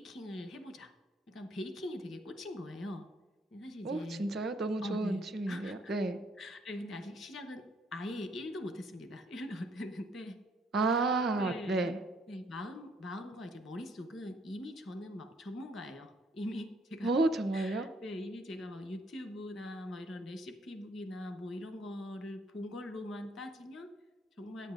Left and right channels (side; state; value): both; normal; correlation 0.66